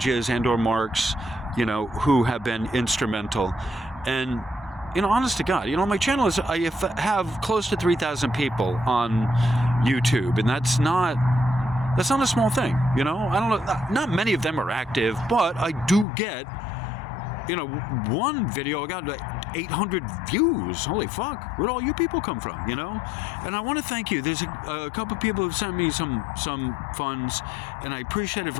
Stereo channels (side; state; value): right; drops out; at 16.1 s